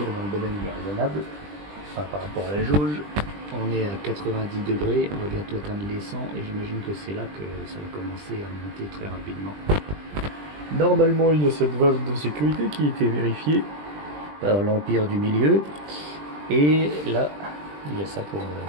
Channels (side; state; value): left; late; 20 ms